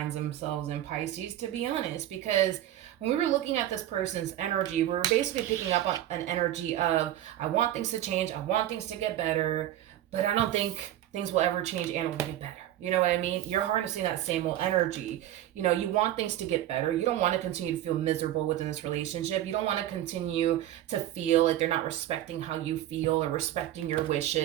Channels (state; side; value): quieter; left; 12.9 dB